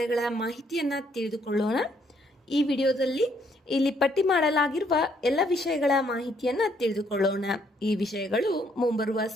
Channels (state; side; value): normal; both; correlation 0.69